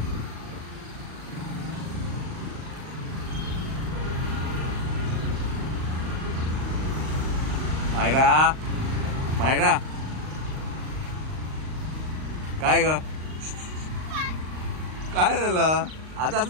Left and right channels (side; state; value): left; late; 38 ms